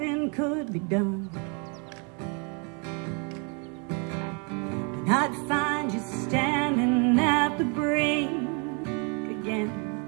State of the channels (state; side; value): quieter; left; 35.8 dB